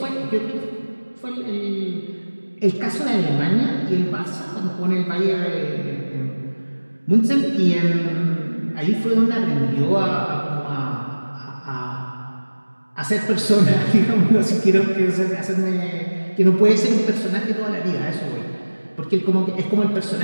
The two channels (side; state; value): both; inverted; correlation -1.00